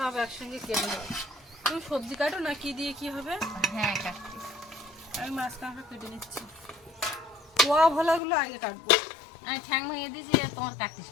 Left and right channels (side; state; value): right; drops out; at 8.2 s